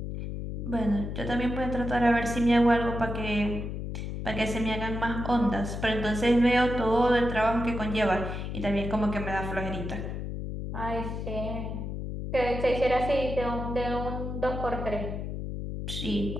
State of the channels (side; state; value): left; noise; hum, 5 dB below the sound